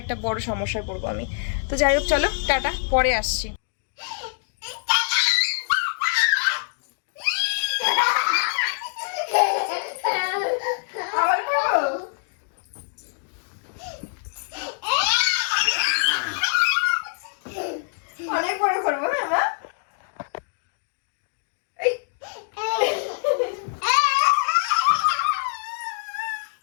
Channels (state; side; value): silent; right; digital silence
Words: একটা বড় সমস্যায় পড়বো আমি। তো যাই হোক চলো টাটা, পরে আসছি। অনেক বড় করবো হ্যাঁ মা।